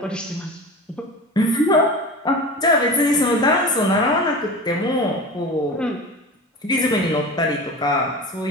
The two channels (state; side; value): normal; both; correlation 0.32